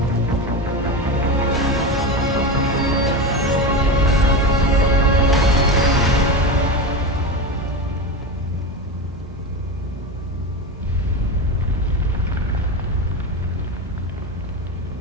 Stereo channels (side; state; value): both; normal; correlation 0.20